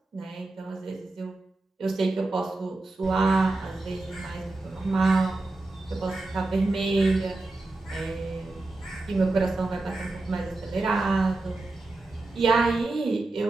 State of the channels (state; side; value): quieter; left; 3.1 dB